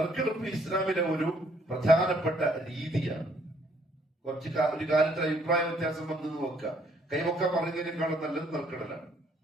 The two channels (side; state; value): both; normal; correlation 0.66